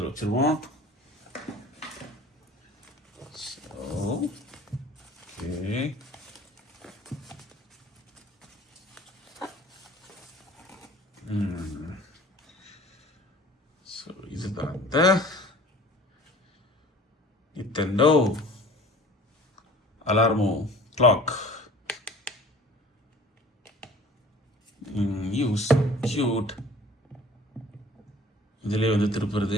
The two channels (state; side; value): normal; both; correlation 0.47